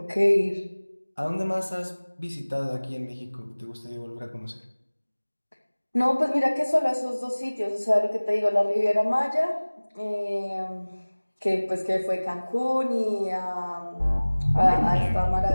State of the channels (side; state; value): both; inverted; correlation -1.00